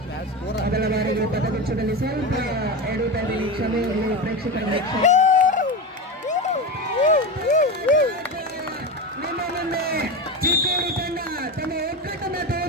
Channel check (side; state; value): both; normal; correlation 0.21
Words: ಮೊದಲ ಬಾರಿಗೆ ಪದಗುಚ್ಛದಲ್ಲಿ ಸ್ವಲ್ಪ ಎಡುತ್ತಾ ಇದ್ದೀನಿ, ಕ್ಷಮೆ ಇರಲಿ ಪ್ರೇಕ್ಷಕರಲ್ಲಿ. ನಿಮ್ಮ ಮುಂದೆ ಚಿಕ್ಕೋಡಿ ತಂಡ ತಮ್ಮ ಒಗ್ಗಟ್ಟನ್ನ